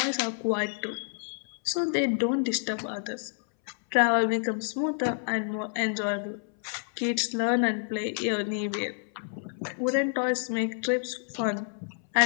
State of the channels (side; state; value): right; silent; 59 dB below the other